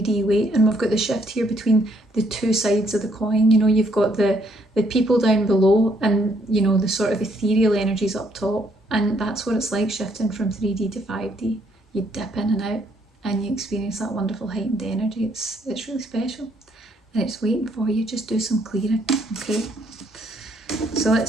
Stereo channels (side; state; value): both; normal; correlation 0.70